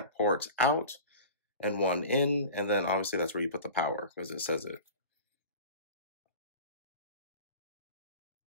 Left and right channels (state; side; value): inverted; both; correlation -0.36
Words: ports out and 1 in, and then obviously that's where you put the power because it says it.